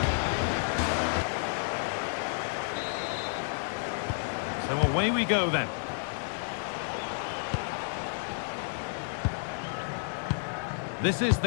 So away we go then. This is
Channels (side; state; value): right; silent; 57 dB below the other